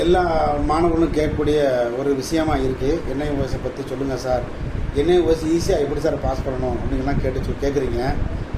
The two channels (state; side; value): identical; both; correlation 1.00